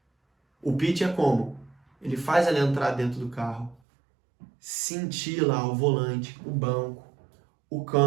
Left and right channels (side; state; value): left; drops out; at 3.8 s